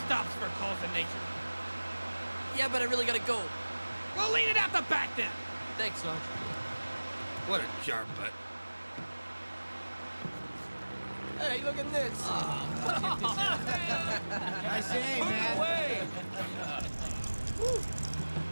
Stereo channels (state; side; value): inverted; both; correlation -1.00